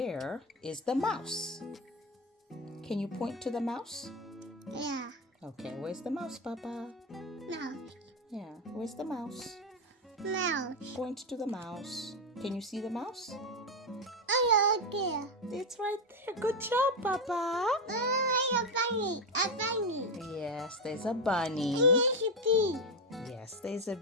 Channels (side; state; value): both; normal; correlation 0.09